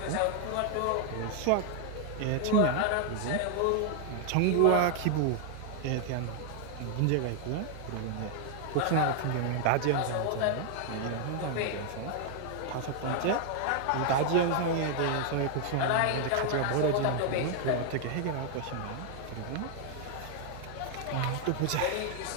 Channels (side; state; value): both; different; correlation 0.00